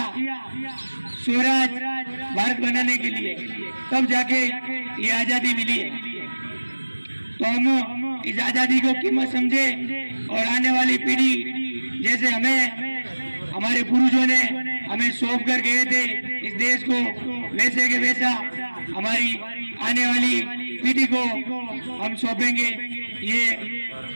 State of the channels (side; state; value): both; inverted; correlation -1.00